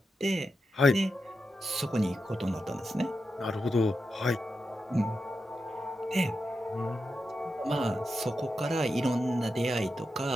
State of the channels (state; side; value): normal; both; correlation 0.88